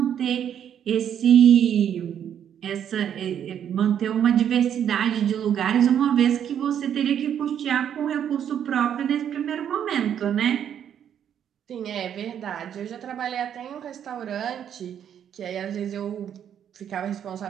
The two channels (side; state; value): left; quieter; 9.2 dB